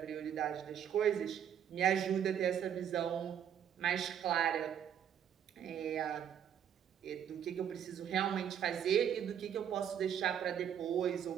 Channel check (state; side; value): quieter; left; 9.1 dB